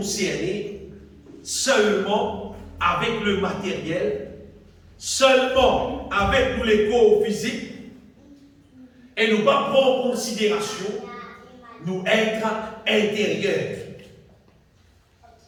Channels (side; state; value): both; identical; correlation 1.00